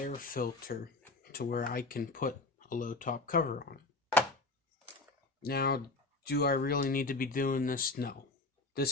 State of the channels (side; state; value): right; quieter; 3.3 dB